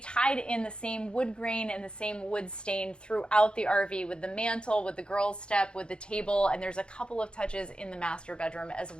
in the same wood grain and the same wood stain throughout the RV with the mantle, with the girls' step, with the table, and there's a couple of touches in the master bedroom as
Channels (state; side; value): late; right; 0.053 ms